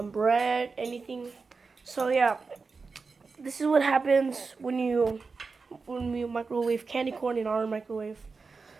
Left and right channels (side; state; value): left; quieter; 4.5 dB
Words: bread, anything. So yeah, this is what happens when we microwave candy corn in our microwave.